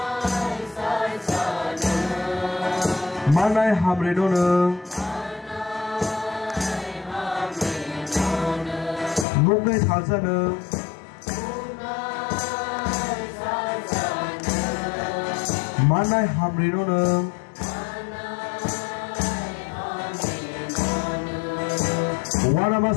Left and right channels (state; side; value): drops out; right; at 9.2 s